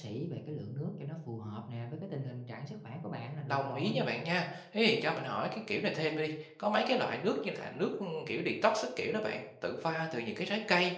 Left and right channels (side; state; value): both; identical; correlation 1.00